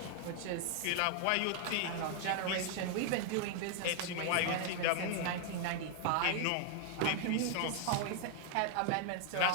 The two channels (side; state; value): both; different; correlation 0.00